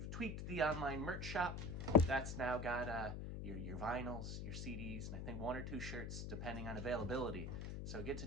tweaked the online merch shop. That's now got your vinyls, your CDs, and I think 1 or 2 shirts depending on availability. So get to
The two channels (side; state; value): left; noise; hum, 5 dB below the sound